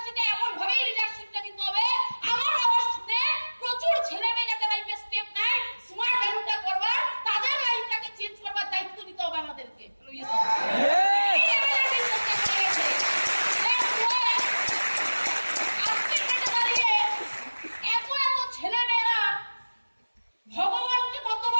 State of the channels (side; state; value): both; inverted; correlation -1.00